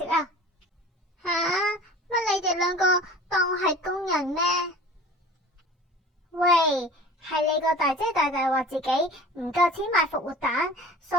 啦！吓，乜你哋兩個當我係工人咩？喂，係你個大姐大大話自己唔夠錢買復活蛋，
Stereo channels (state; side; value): normal; both; correlation 0.42